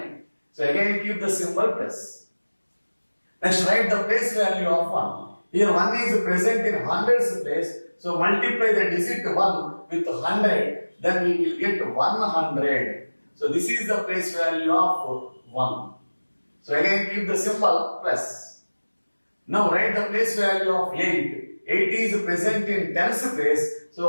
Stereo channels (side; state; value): both; inverted; correlation -1.00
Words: So again, keep the symbol plus. Next, write the place value of 1. Here 1 is present in hundreds place. So multiply the digit 1 with 100. Then we will get 100. So this is the place value of 1. So again keep the symbol plus. Now write the place value of 8. 8 is present in tens place. So